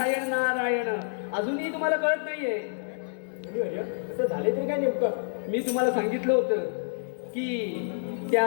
नारायण अजूनही तुम्हाला कळत नाहीये असं झाले तरी काय नेमकं मी तुम्हाला सांगितलं होतं की त्या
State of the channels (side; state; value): right; silent; digital silence